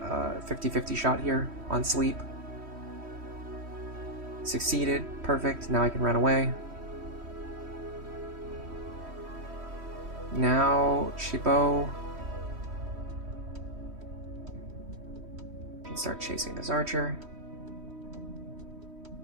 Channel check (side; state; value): left; late; 3.1 ms